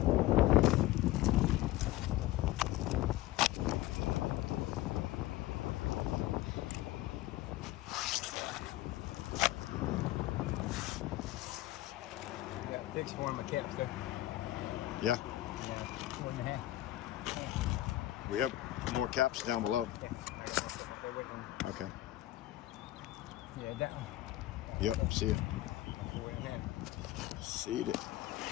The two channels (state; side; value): quieter; right; 15.9 dB